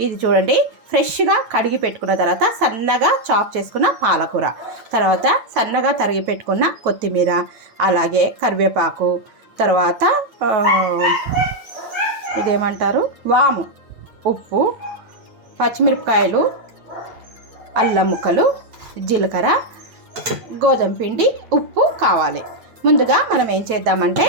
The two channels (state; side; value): late; left; 8.8 ms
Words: ఇది చూడండి. ఫ్రెష్గా కడిగి పెట్టుకున్న తర్వాత సన్నగా చాప్ చేసుకున్న పాలకూర, తర్వాత సన్నగా తరిగి పెట్టుకున్న కొత్తిమీర, అలాగే కరివేపాకు, తర్వాత ఇదేమంటారు వాము, ఉప్పు, పచ్చిమిరపకాయలు, అల్లం ముక్కలు, జీలకర్ర, గోధుమ పిండి, ఉప్పు కావాలి. ముందుగా మనం ఏం చేద్దామంటే